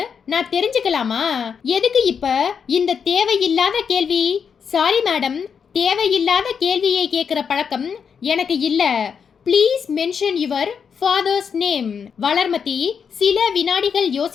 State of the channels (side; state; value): right; quieter; 6.7 dB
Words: நான் தெரிஞ்சுக்கலாமா? எதுக்கு இப்ப இந்த தேவையில்லாத கேள்வி? சாரி மேடம், தேவையில்லாத கேள்வியை கேட்கிற பழக்கம் எனக்கு இல்ல. Please mention your father's name. Valarmathi சில வினாடிகள்